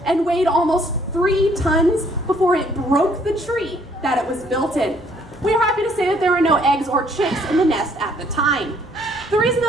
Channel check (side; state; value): both; normal; correlation 0.63